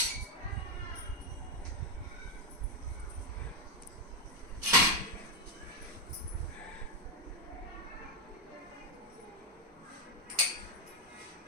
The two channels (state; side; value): normal; both; correlation 0.01